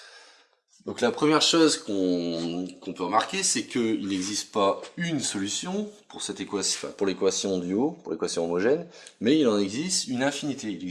Donc la première chose qu'on peut remarquer, c'est qu'il n'existe pas une solution pour cette équation, pour l'équation du haut, pour l'équation homogène, mais il en existe une infinité. Il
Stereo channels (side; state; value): both; identical; correlation 1.00